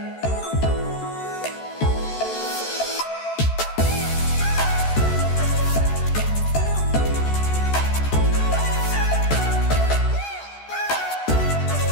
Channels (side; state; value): right; late; 14 ms